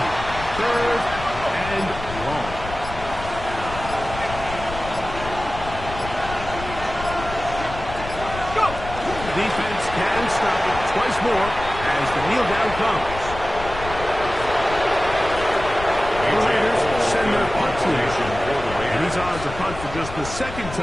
3rd and long. Defense can stop it twice more as the kneel down comes. The Raiders send their punt team. And he's on to punt for just the 2nd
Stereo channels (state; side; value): noise; left; rumble, 11 dB below the sound